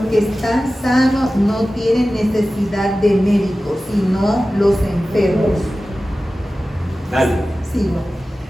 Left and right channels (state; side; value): normal; both; correlation 0.95